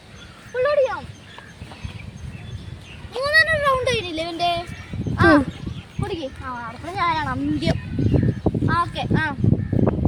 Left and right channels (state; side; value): identical; both; correlation 1.00